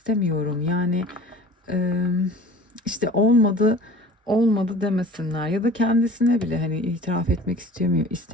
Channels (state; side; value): normal; both; correlation 0.43